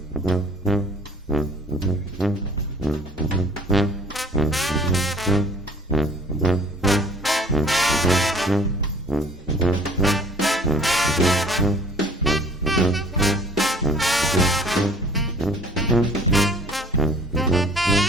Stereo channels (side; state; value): both; normal; correlation 0.51